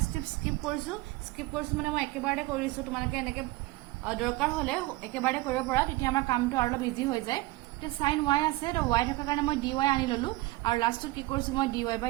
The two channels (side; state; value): left; quieter; 20.2 dB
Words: স্টেপ স্কিপ কৰিছো মানে মই একেবাৰে কৰিছো তোমালোকে এনেকে দৰকাৰ হলে একেবাৰে কৰিব পৰা তেতিয়া আমাৰ কামটো আৰু অলপ ইজি হৈ যায় তে sin y আছে তো y থকা কাৰণে মই dy আনি ললো আৰু লাষ্টত কি কৰিছো মই dy by